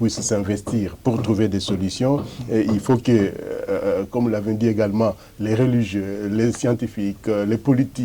s'investir pour trouver des solutions. Et il faut que, comme vous l'avez dit également, les religieux, les scientifiques, les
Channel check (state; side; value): identical; both; correlation 1.00